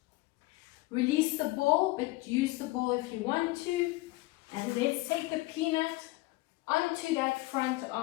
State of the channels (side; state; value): right; quieter; 21.0 dB